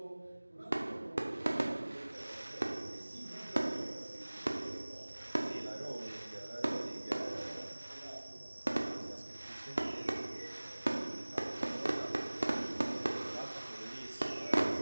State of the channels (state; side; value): inverted; both; correlation -1.00